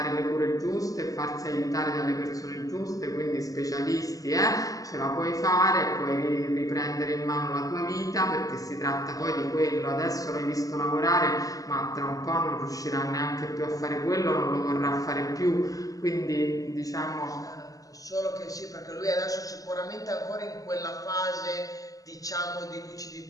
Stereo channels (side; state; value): right; late; 0.17 ms